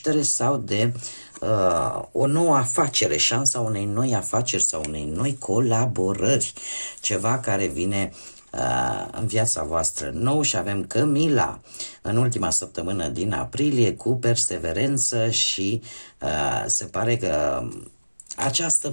sau de o nouă afacere, șansa unei noi afaceri sau unei noi colaborări, ceva care vine în viața voastră nou. Și avem Camila în ultima săptămână din aprilie cu perseverență și se pare că această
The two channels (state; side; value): inverted; both; correlation -1.00